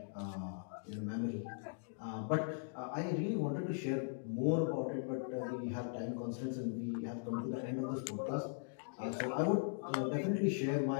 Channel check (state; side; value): silent; right; digital silence